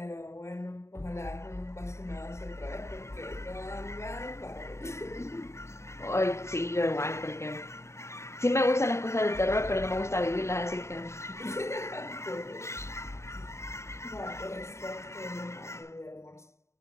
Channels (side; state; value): right; late; 0.14 ms